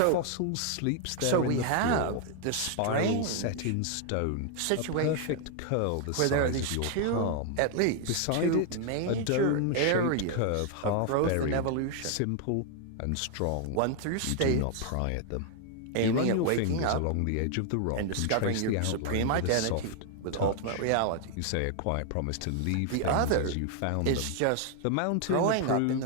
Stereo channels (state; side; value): different; both; correlation 0.00